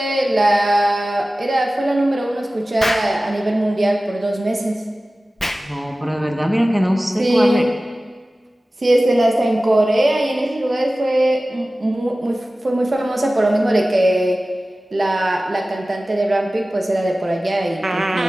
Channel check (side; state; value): both; normal; correlation 0.97